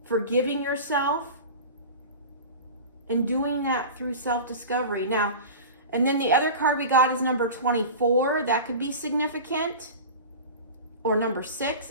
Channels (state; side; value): inverted; both; correlation -0.32